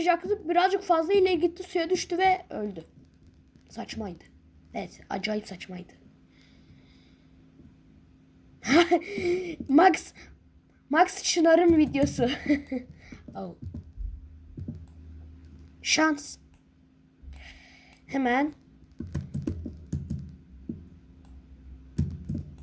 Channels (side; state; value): both; identical; correlation 1.00